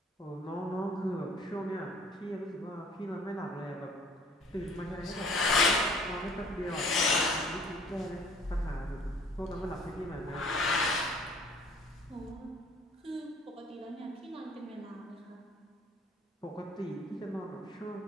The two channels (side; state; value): both; normal; correlation 0.54